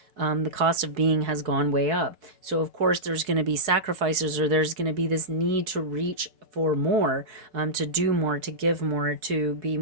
the cost of being has gone way up. So of course there's going to be sacrifices, or there's going to be this need to reach for more, to do more, to give more, to be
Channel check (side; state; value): left; late; 4.7 ms